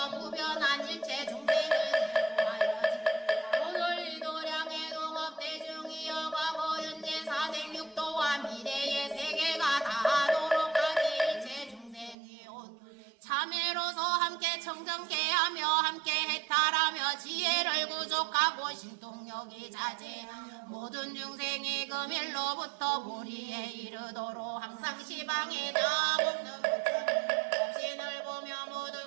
무변한 일체 중생을 대로하여지 오늘 이 도량에 정정케하며 함께 해탈하며 지혜를 구족하고 신통력이 자제 모든 중생이 금일로부터 보리에 이르도록 항상 시방에 다 먹는 부처님 보며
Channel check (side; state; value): left; drops out; at 12.2 s